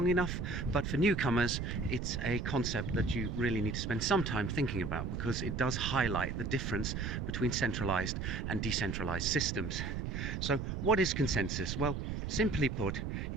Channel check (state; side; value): noise; right; rumble, 3 dB below the sound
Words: enough, but for newcomers it's a concept that you really need to spend some time thinking about, because it does highlight the difference between centralized and decentralized systems. So what is consensus? Well, simply put,